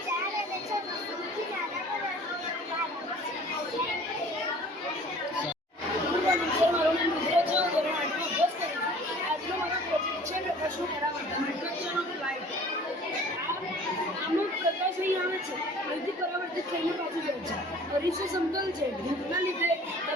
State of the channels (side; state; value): both; normal; correlation 0.48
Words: અરીસો સમતલ છે. ધૂપના લીધે